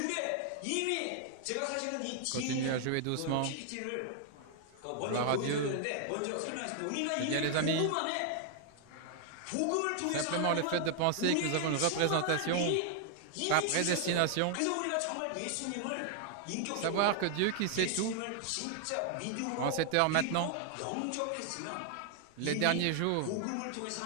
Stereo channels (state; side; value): different; both; correlation 0.00